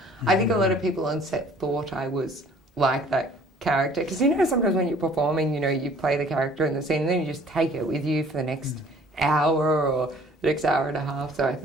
I think a lot of people on set thought I was like that character, because sometimes when you're performing, you play the character in the scene and then you just take it with you for the next hour or the next hour and a half. So I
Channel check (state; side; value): normal; both; correlation 0.54